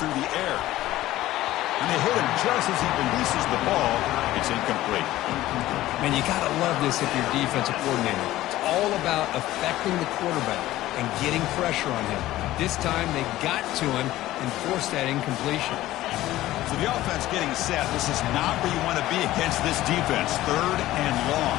the air. And they hit him just as he releases the ball. It's incomplete. Man, you got to love this if you're defensive coordinator. It's all about affecting the quarterback and getting pressure on him. This time they got to him and forced that incompletion. So the offense getting set. This is not where you want to be against this defense. 3rd and long.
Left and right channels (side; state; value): right; quieter; 15.6 dB